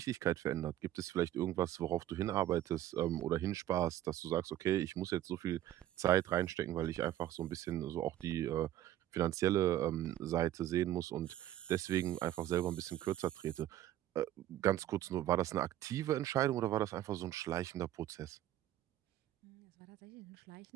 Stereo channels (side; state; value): left; quieter; 12.9 dB